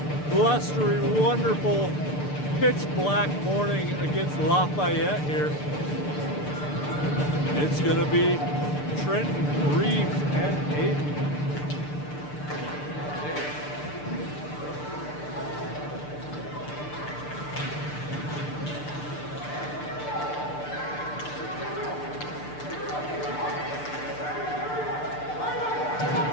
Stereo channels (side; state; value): right; late; 6.7 ms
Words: blustery, wonderful, pitch black morning against Lafayette here. It's going to be Trenton, Reeves, and Aiden.